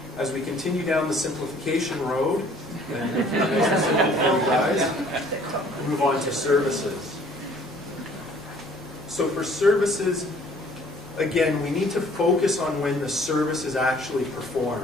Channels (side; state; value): both; normal; correlation 0.56